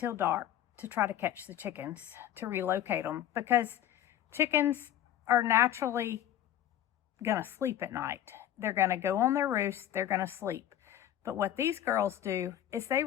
dark to try to catch the chickens, to relocate them, because chickens are naturally gonna sleep at night. They're gonna go on their roost, they're gonna sleep. But what these girls do is they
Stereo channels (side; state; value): right; quieter; 11.7 dB